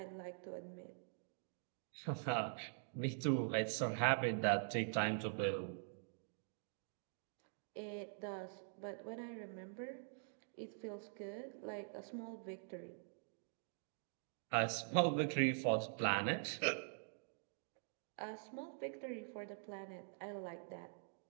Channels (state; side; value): silent; left; digital silence